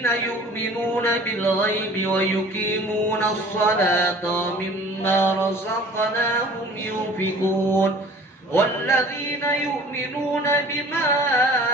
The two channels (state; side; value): normal; both; correlation 0.47